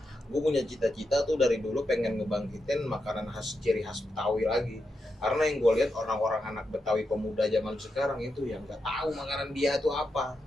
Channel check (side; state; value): both; normal; correlation 0.86